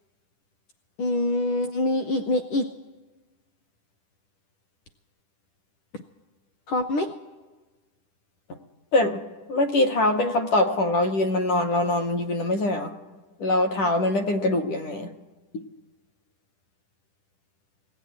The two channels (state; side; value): late; right; 10 ms